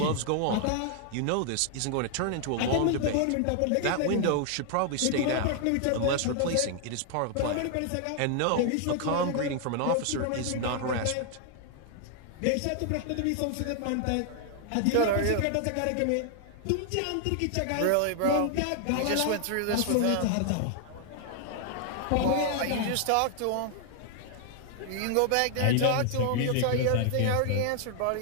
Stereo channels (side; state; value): both; different; correlation 0.00